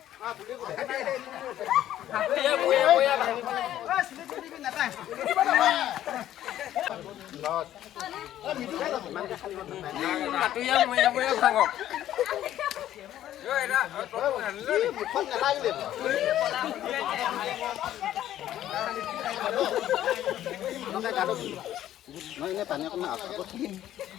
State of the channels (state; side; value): quieter; right; 12.3 dB